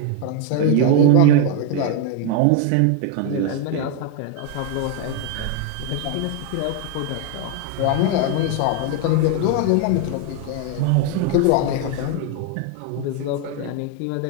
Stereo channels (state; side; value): different; both; correlation 0.01